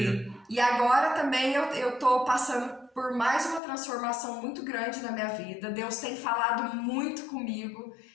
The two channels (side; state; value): right; drops out; at 3.6 s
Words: E agora também eu tô passando por mais uma transformação muito grande na minha vida. Deus tem falado muito comigo,